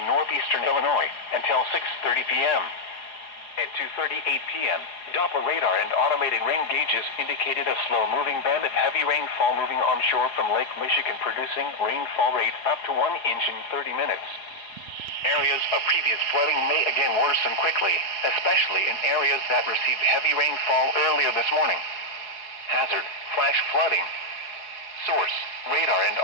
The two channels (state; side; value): late; right; 4.8 ms